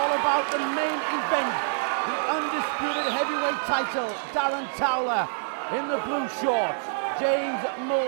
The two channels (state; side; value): silent; left; digital silence